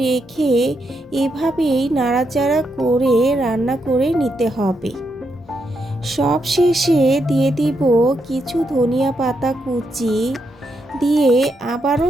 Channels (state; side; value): normal; both; correlation 0.81